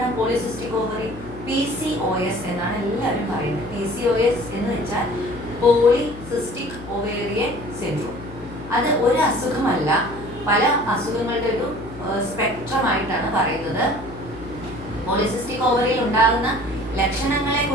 പോളിസിസ്റ്റിക് ഓവറി? PCOS എന്നാണ് എല്ലാവരും പറയുന്നത്. PCOS എന്ന് വെച്ചാൽ പോളിസിസ്റ്റിക് ഒവേറിയൻ സിൻഡ്രോം. അത് ഒരു അസുഖമല്ല, പല അസുഖങ്ങളുടെ ഒരു സ്പെക്ട്രമായിട്ടാണ് പറയുന്നത്. പോളിസിസ്റ്റിക് ഓവറിയിൽ ഉണ്ടാകുന്ന ലക്ഷണങ്ങളെ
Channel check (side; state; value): left; noise; hum, 16 dB below the sound